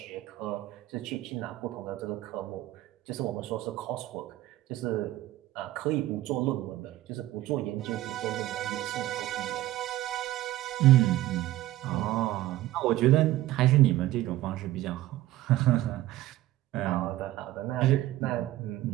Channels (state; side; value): quieter; left; 15.5 dB